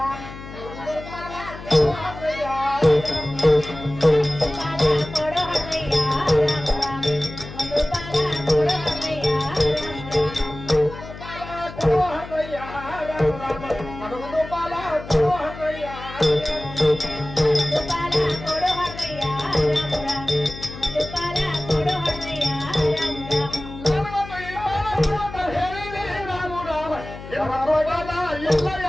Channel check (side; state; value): left; noise; hum, 13 dB below the sound